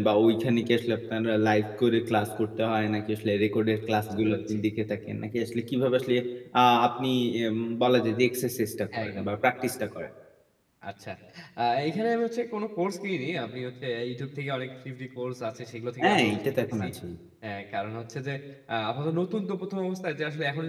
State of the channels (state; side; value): identical; both; correlation 1.00